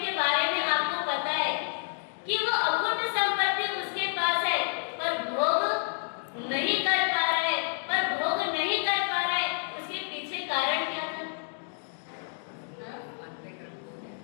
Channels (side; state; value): right; silent; 58 dB below the other